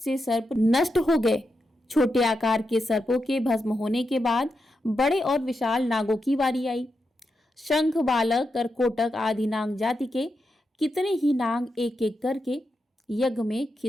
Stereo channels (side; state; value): both; normal; correlation 0.86